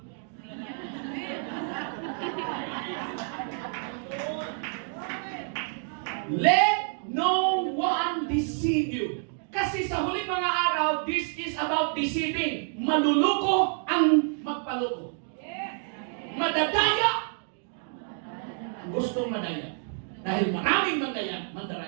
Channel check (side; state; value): left; silent; 56 dB below the other